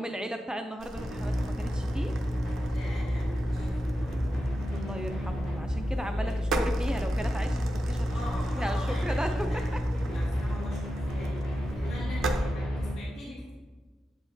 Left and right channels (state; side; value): normal; both; correlation 0.91